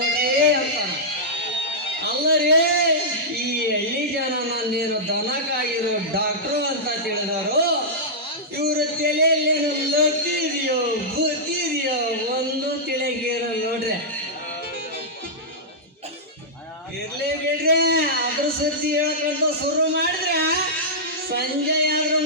ಅಂತ. ಅಲ್ಲರೇ ಈ ಹಳ್ಳಿ ಜನ ನಾನೇನು ದನಕ್ಕಾಗಿರೋ ಡಾಕ್ಟ್ರು ಅಂತ ತಿಳಿದವರು, ಇವ್ರ ತಲೆಯಲ್ಲೇನು ಲತ್ತಿದೆಯೋ ಬುತ್ತಿದೆಯೋ ಒಂದು ತಿಳಿಗಿರ ನೋಡ್ರಿ. ಇರ್ಲಿ ಬಿಡ್ರಿ, ಅದ್ರ ಸುದ್ದಿ ಹೇಳ್ಕೊಂತ ಶುರು ಮಾಡಿದ್ರೆ ಸಂಜೆ ಆದ್ರೂ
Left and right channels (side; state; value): both; normal; correlation -0.11